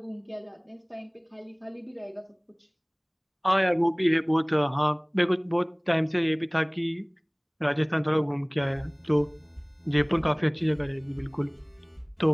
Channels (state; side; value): identical; both; correlation 1.00